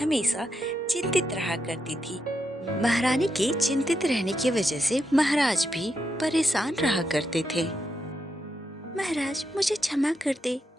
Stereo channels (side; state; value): both; normal; correlation 0.83